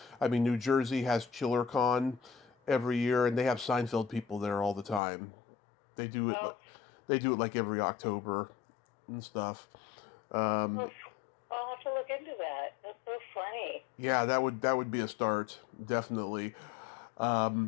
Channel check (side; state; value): right; drops out; at 5.0 s